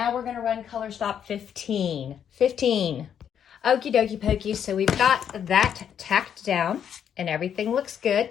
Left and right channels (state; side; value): quieter; right; 8.7 dB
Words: we're going to run color stop 15. 15. Okie dokie pokey, so we've got that tacked down and everything looks good.